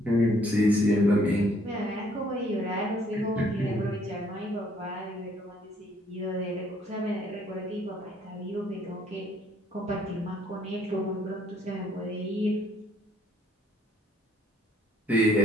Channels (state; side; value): normal; both; correlation 0.64